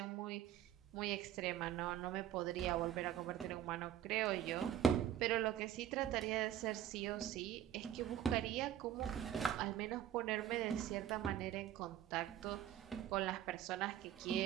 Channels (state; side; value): quieter; left; 10.9 dB